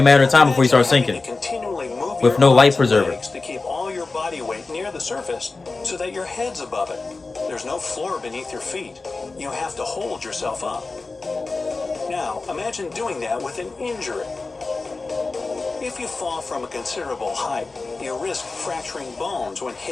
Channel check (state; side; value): quieter; right; 3.7 dB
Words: a matter of time before you start Imagine having sinking. to continually move With your no life arms and preserver. legs to keep all your body weight near the surface so that your head's above it. There's no floor beneath your feet. You have to hold yourself up. Now, imagine doing that with an injury. If you fall from a considerable height, you risk fracturing bones when